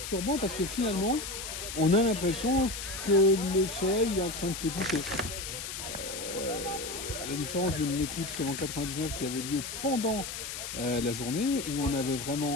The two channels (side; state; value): left; noise; hiss, 7 dB below the sound